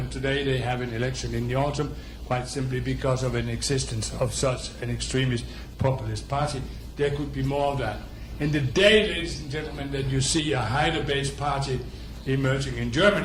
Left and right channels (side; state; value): both; identical; correlation 1.00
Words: today. They have an election in the autumn, quite simply because of an existence of such an extremist populist party. There could be more of that. And the day, ladies and gentlemen, that you see a Haider-based party emerging in